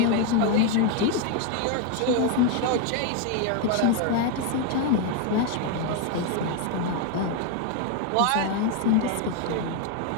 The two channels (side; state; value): both; different; correlation 0.01